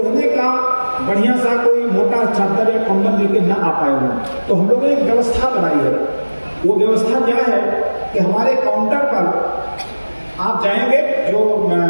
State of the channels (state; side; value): inverted; both; correlation -1.00